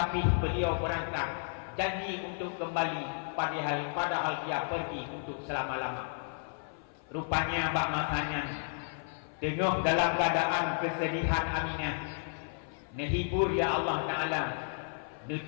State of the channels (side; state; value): right; silent; 55 dB below the other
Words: beliau berangkat janji untuk kembali padahal dia pergi untuk selama-lama. Rupanya bak masanya tengah dalam keadaan kesedihan Aminah. Nehibur ya Allah Ta'ala